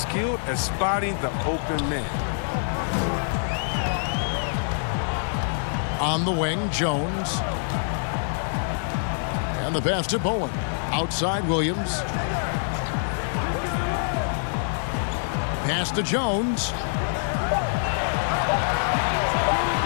at spotting the open man. On the wing, Jones. And the pass to Bowen. Outside, Williams. Pass to Jones.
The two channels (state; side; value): silent; right; digital silence